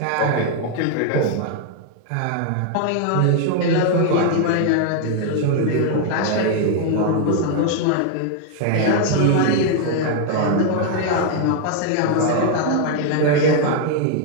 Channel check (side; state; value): both; different; correlation 0.00